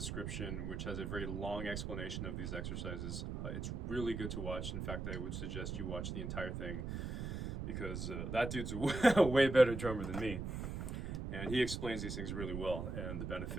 which has a very long explanation of these exercises. It's really good to watch. In fact, I would suggest you watch the entire thing because that dude's a way better drummer than me. And he explains these things really well and the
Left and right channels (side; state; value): right; noise; rumble, 4 dB below the sound